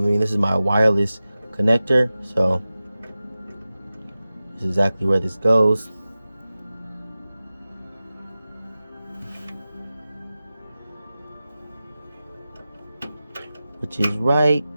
is my wireless connector. So this is exactly where this goes. Which is right.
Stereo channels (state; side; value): inverted; both; correlation -0.95